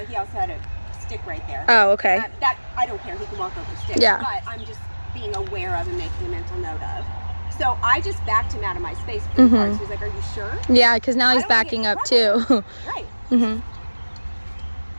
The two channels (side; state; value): both; inverted; correlation -1.00